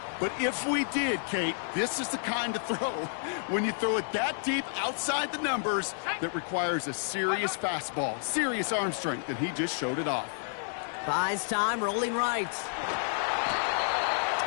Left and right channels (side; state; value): right; silent; digital silence